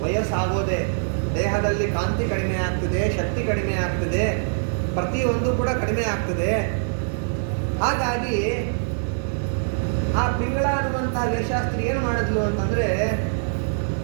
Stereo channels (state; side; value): silent; left; digital silence